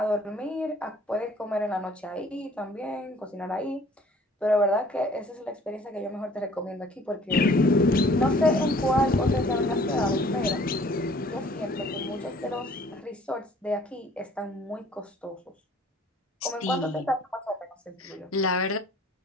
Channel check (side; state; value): both; normal; correlation 0.55